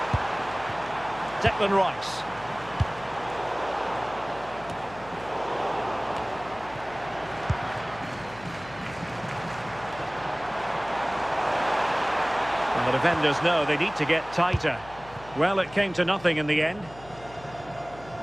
Declan Rice. And the defenders know they need to get tighter. Well, it came to nothing in the end.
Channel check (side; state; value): left; noise; hum, 19 dB below the sound